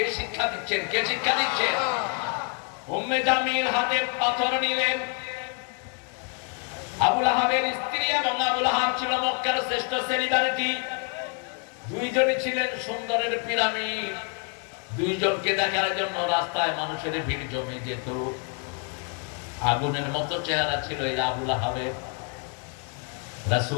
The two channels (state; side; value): quieter; right; 37.6 dB